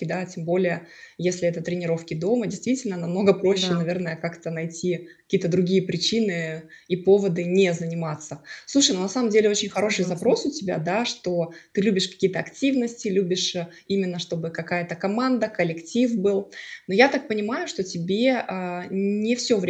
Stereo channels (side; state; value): both; identical; correlation 1.00